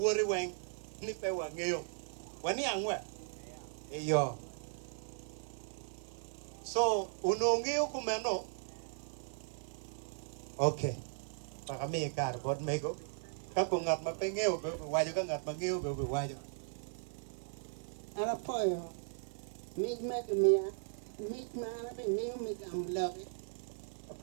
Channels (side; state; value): left; silent; 53 dB below the other